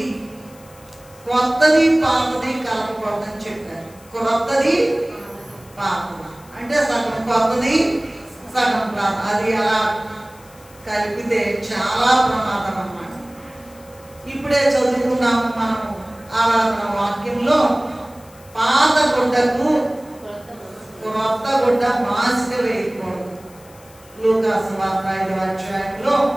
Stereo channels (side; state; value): left; noise; hiss, 25 dB below the sound